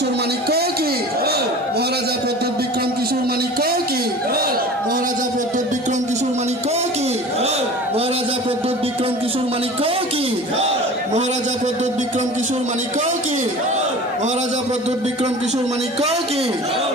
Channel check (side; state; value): both; normal; correlation 0.39